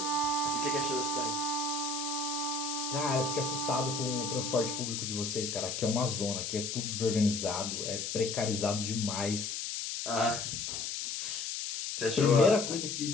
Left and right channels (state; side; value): noise; left; hiss, 3 dB below the sound